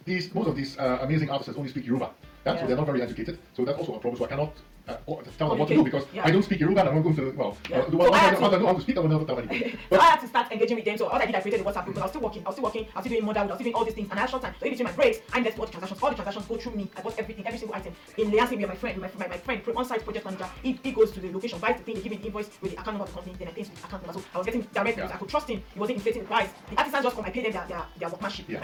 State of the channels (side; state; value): both; identical; correlation 1.00